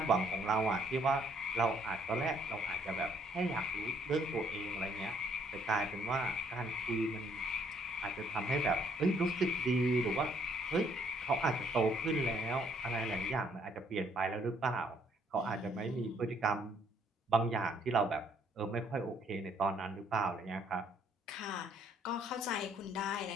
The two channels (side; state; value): both; normal; correlation 0.66